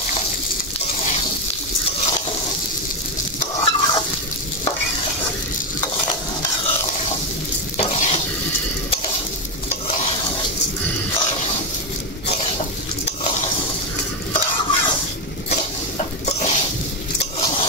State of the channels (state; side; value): normal; both; correlation 0.08